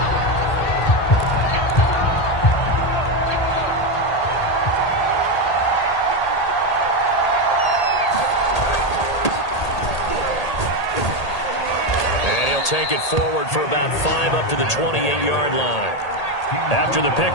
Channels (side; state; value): right; late; 1.8 ms